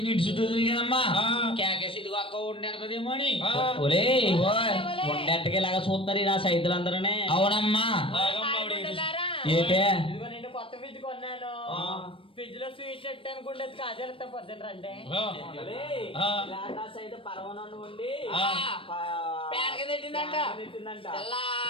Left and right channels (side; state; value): right; late; 0.26 ms